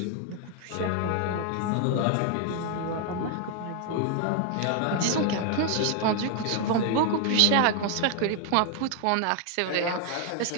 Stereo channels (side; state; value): both; different; correlation 0.00